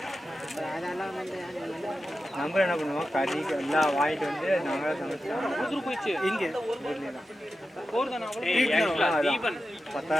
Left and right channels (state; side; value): normal; both; correlation 0.92